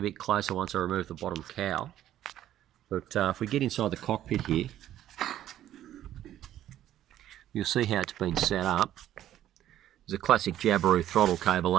bit closer once I remove the bottom cowl. But if we get inside the cockpit here, you'll see how it's been set up. There's a classic Jabiru throttle cable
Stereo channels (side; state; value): left; quieter; 12.3 dB